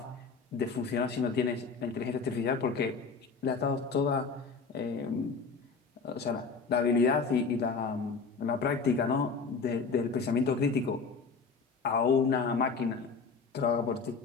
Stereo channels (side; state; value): right; quieter; 4.8 dB